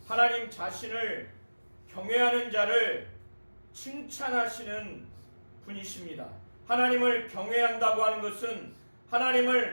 하나님 자신을 경외하는 자를 칭찬하시는 분이십니다. 하나님을 경외한다고 하는 것은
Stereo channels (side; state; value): both; inverted; correlation -1.00